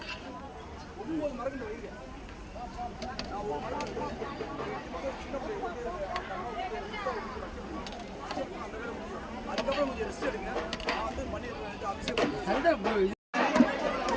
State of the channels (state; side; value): identical; both; correlation 1.00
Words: அதுக்கப்புறம் கொஞ்சம் ரெஸ்ட் எடுங்க. நான் வந்து பண்ணிடுறேன்.